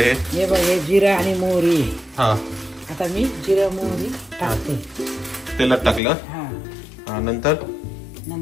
हे बघ, हे जिरं आणि मोहरी. हा. आता मी जिरं मोहरी टाकते. तेलात टाकलं. हा. नंतर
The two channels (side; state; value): right; drops out; at 6.0 s